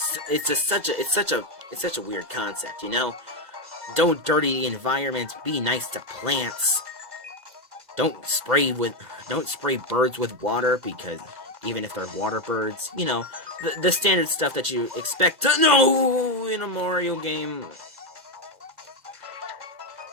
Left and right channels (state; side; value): late; left; 2.0 ms